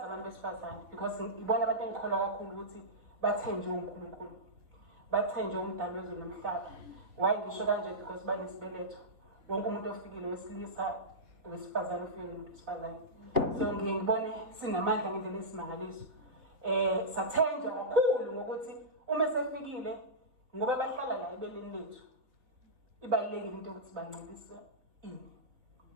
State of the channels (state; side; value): late; left; 3.4 ms